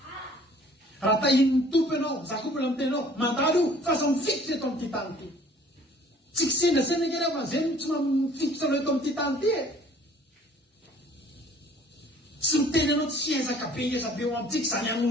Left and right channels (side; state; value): both; normal; correlation 0.54